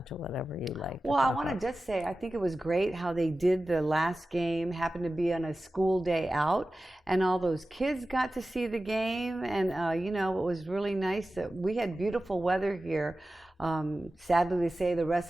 to whatever you like. Well, I want to just say, I think it was great how they did the last game, happened to be on a school day out, and all those kids got to see the game, and, it was really nice that we had beautiful weather here. Sadly to say the rest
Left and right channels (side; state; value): both; normal; correlation 0.95